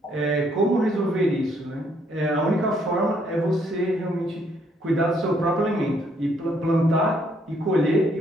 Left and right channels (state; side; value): normal; both; correlation 0.69